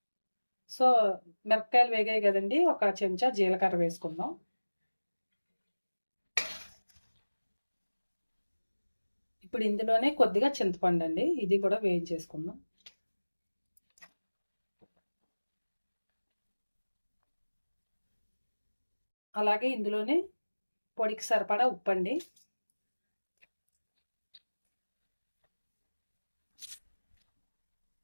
సో మిరపకాయలు వేగాయి కదండి, ఒక చెంచా జీలకర్ర వేసుకుందాం. ఇప్పుడు ఇందులోనే కొద్దిగా చింతపండు అండి, ఇది కూడా వేయించేసుకుందాం. అలాగే ఇందులోనే పొడికి సరిపడా ఉప్పు అండి.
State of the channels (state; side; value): inverted; both; correlation -1.00